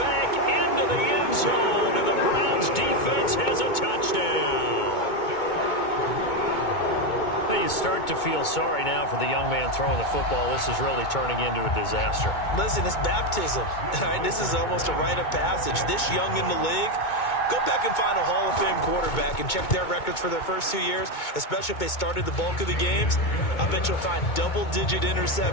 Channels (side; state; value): right; late; 2.2 ms